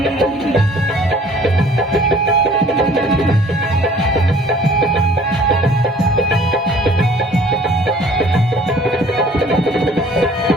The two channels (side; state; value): both; normal; correlation 0.53